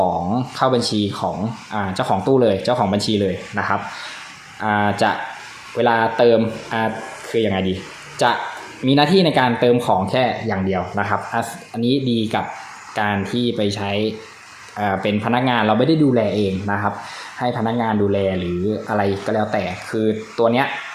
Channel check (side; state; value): both; identical; correlation 1.00